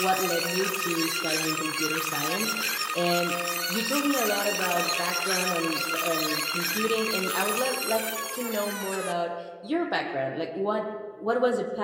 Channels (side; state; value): both; identical; correlation 1.00